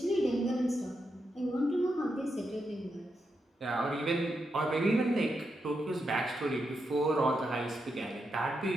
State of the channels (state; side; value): normal; both; correlation 0.84